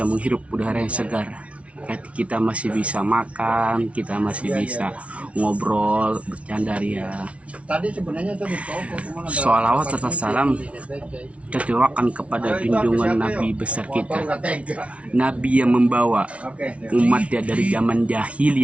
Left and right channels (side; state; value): left; late; 0.063 ms